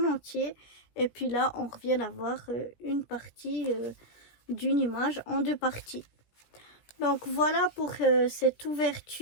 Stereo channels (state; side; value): late; right; 17 ms